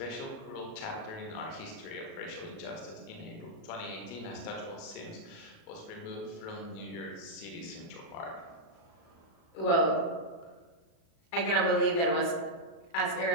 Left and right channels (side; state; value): right; late; 37 ms